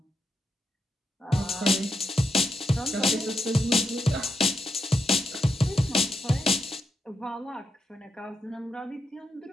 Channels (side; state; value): both; normal; correlation 0.82